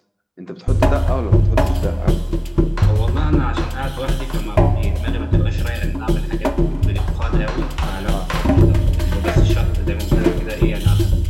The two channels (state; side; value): identical; both; correlation 1.00